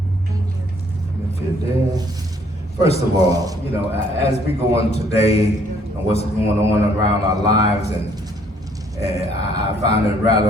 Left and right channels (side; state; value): both; normal; correlation 0.64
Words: First of all, as we go on today and what's going on around our lives, and I find it